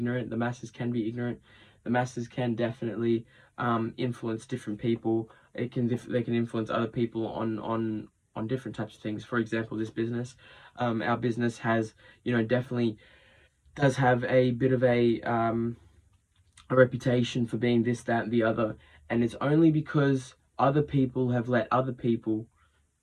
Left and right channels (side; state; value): both; identical; correlation 1.00